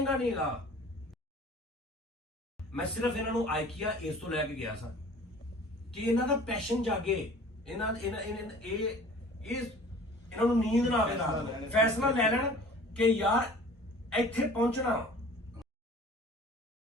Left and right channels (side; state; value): both; normal; correlation 0.46